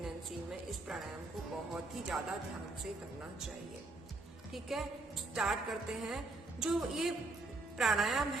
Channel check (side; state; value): left; quieter; 3.1 dB